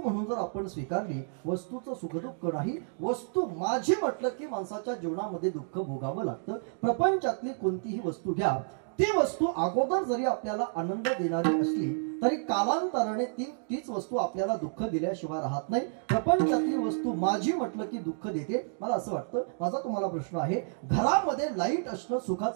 म्हणून जर आपण स्वीकारली, वस्तूचं सुखदुःख नाही. वस्तू माझी म्हटलं की माणसाच्या जीवनामध्ये दुःख भोगावं लागतं. प्रपंचातली कोणतीही वस्तू घ्या, ती वस्तू अगोदर जरी आपल्याला आनंद देणारी असली तरी कालांतराने तीच वस्तू आपल्याला दुःख दिल्याशिवाय राहत नाही. प्रपंचातली वस्तू माझी म्हटलं की दुःख देते. मला असं वाटतं, माझा तुम्हाला प्रश्न आहे, घरामध्ये लाईट असणं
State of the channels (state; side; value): silent; left; digital silence